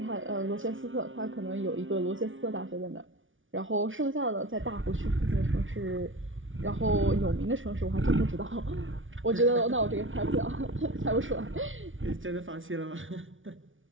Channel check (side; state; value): left; late; 0.57 ms